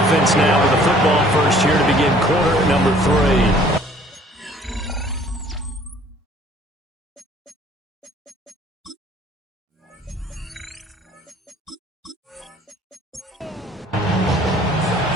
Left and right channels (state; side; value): normal; both; correlation 0.56